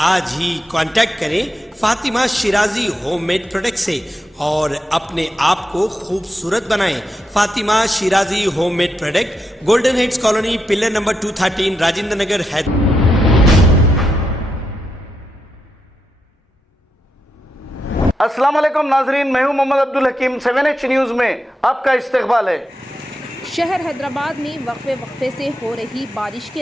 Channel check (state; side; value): normal; both; correlation 0.84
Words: आज ही कांटेक्ट करें फातिमा शिराजी होममेड प्रोडक्ट से और अपने आप को खूबसूरत बनाएं। Fatima Shirazi homemade product, golden heads colony, pillar number 213, Rajendra Nagar, Hyderabad. अस्सलाम वालेकुम नाजरीन, मैं हूं मोहम्मद अब्दुल हकीम। 7H न्यूज़ में आपका इस्तकबाल है। शहर हैदराबाद में वक्फे से हो रही बारिश